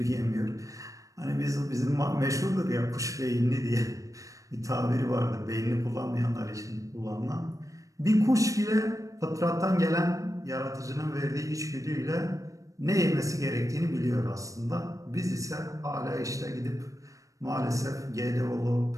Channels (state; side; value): late; left; 0.16 ms